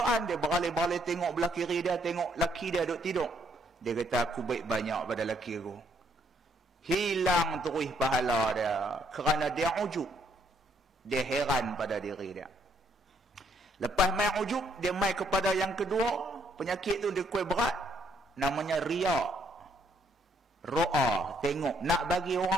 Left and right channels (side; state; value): both; normal; correlation 0.69